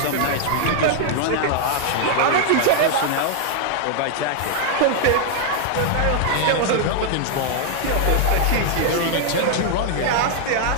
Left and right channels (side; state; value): both; different; correlation 0.00